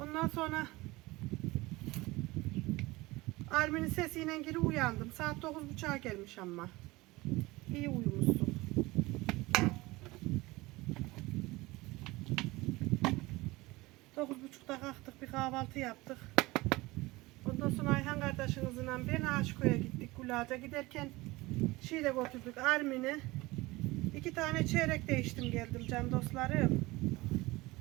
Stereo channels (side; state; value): left; quieter; 21.0 dB